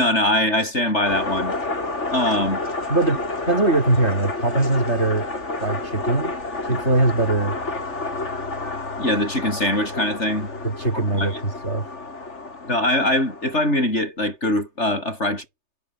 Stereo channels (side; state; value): right; late; 3.3 ms